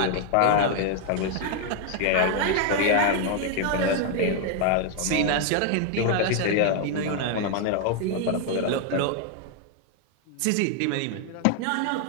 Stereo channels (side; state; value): both; different; correlation 0.00